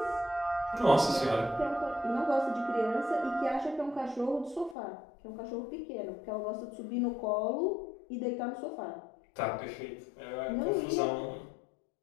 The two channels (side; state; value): right; drops out; at 4.8 s